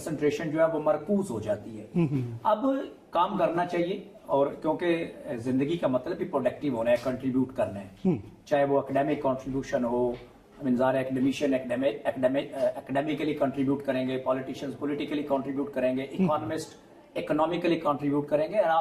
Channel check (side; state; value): both; identical; correlation 1.00